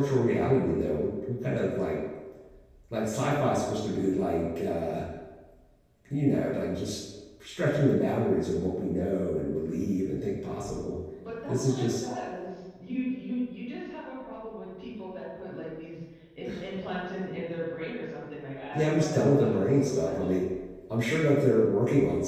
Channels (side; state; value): both; identical; correlation 1.00